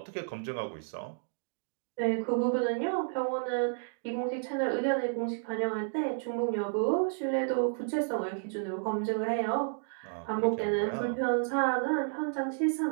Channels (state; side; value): silent; left; digital silence